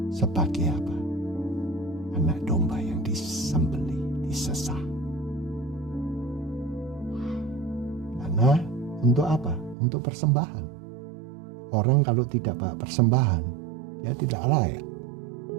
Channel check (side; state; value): left; drops out; at 9.8 s